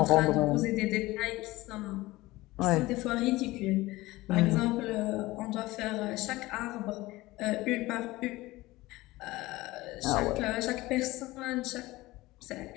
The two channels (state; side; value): quieter; right; 19.2 dB